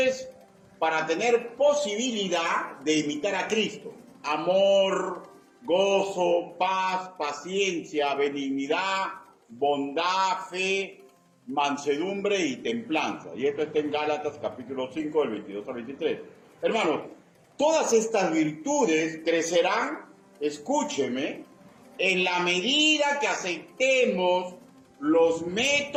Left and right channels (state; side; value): identical; both; correlation 1.00